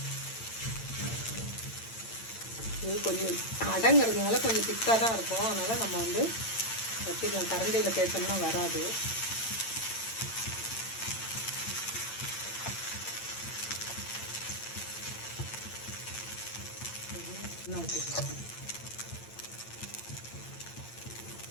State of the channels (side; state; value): right; late; 8.8 ms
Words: இது கொஞ்சம் அடங்கிறதுனால கொஞ்சம் திக்காக தான் இருக்கும். அதனால் நம்ம வந்து தட்டிக்கலாம். கரண்டியில் தேய்ச்சோம்னா வராது.